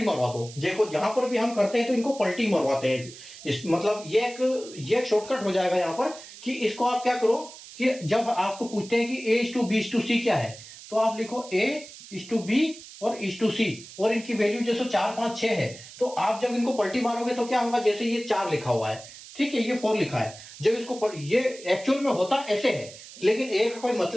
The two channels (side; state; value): right; noise; hiss, 16 dB below the sound